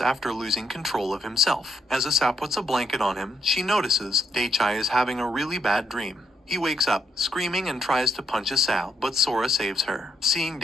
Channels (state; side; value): normal; both; correlation 0.77